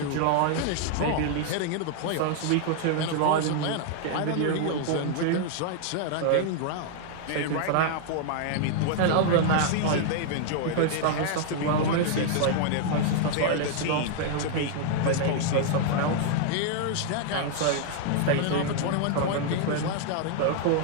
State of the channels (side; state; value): both; different; correlation 0.00